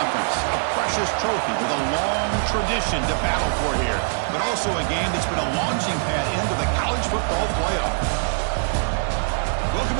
A precious trophy with a long tradition to battle for here. But also a game that's been a launching pad into the college football playoff.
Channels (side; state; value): left; silent; digital silence